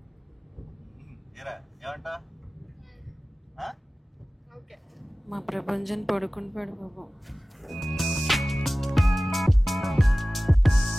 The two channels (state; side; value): normal; both; correlation 0.97